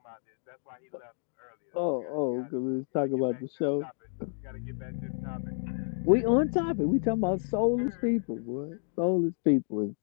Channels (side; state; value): right; silent; 58 dB below the other